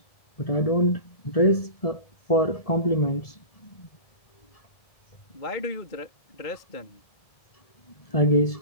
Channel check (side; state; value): right; late; 1.7 ms